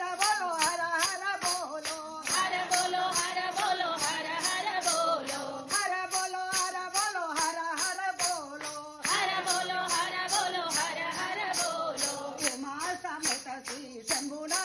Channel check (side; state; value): both; identical; correlation 1.00